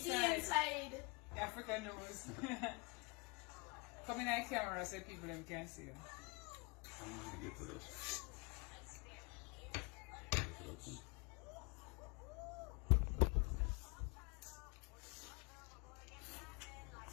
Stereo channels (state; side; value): quieter; right; 30.4 dB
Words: the inside. inside. African nose. Come in that camera so people them can see you. I'm gonna get to this. Get it open.